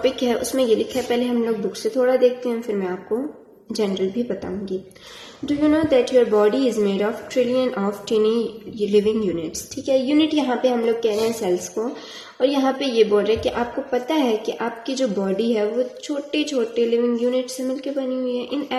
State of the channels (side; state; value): both; identical; correlation 1.00